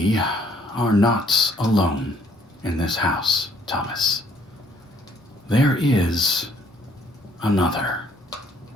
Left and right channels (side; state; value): both; normal; correlation 0.64